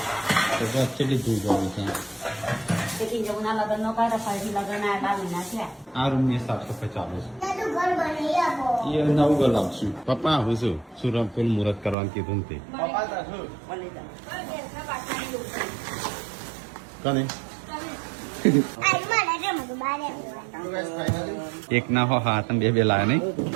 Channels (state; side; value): drops out; left; at 12.0 s